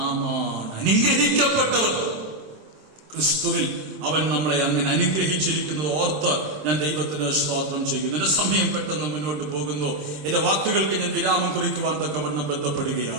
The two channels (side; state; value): left; late; 26 ms